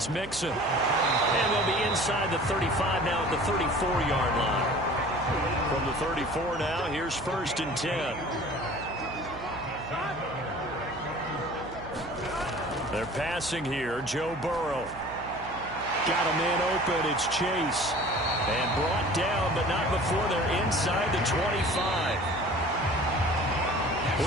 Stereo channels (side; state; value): right; noise; hum, 15 dB below the sound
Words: Mixon. And they'll be inside the 35 now at the 34-yard line. From the 34 now, here's 1st and 10. They're passing here. Joe Burrow. Got a man open. It's Chase. And brought down, but not before they're inside the 25.